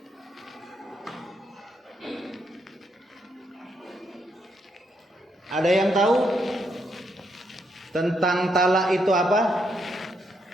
Ada yang tahu tentang talak itu apa?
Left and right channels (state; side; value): normal; both; correlation 0.77